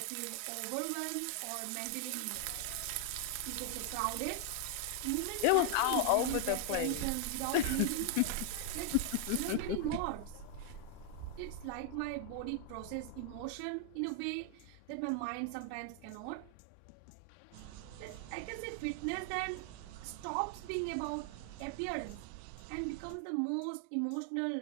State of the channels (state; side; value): different; both; correlation 0.00